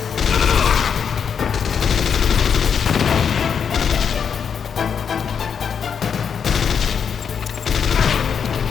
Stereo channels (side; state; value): right; quieter; 7.1 dB